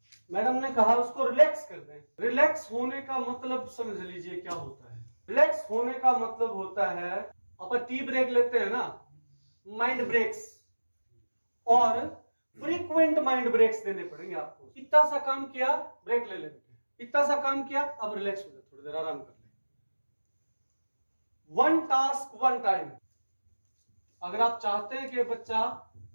मैडम ने कहा उसको रिलैक्स कर दें। रिलैक्स होने का मतलब समझ लीजिए क्या होता है। रिलैक्स होने का मतलब होता है, अपन टी ब्रेक लेते हैं ना, माइंड ब्रेक्स, और फ्रीक्वेंट माइंड ब्रेक्स देने पड़ेंगे आपको। इतना सा काम किया, ब्रेक ले लेते हैं, इतना सा काम किया, अब रिलैक्स हो जाए, थोड़ी देर आराम कर ले। One task one time. अगर आप चाहते हैं कि बच्चा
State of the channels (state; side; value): inverted; both; correlation -1.00